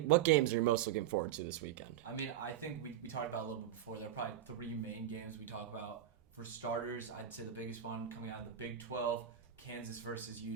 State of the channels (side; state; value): left; quieter; 10.6 dB